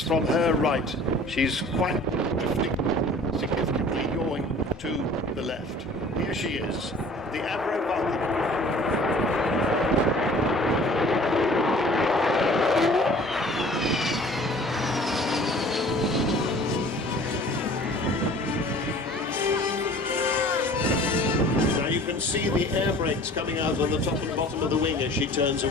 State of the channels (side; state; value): both; normal; correlation 0.48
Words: from her right. She's quite drifting, significantly yawing to the left. Here she is, the AVRO Vulcan. You can see the air brakes coming out on the top and bottom of the wing as she turns